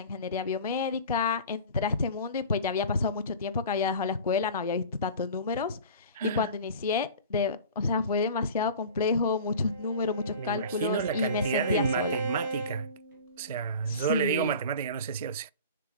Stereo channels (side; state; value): both; inverted; correlation -0.38